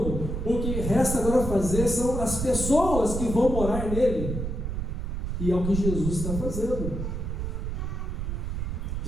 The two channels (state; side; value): noise; right; rumble, 3 dB below the sound